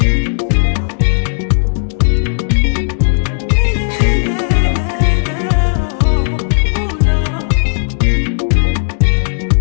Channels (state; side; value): silent; right; digital silence